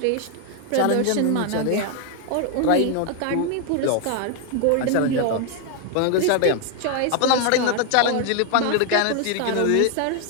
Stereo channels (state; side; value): different; both; correlation 0.00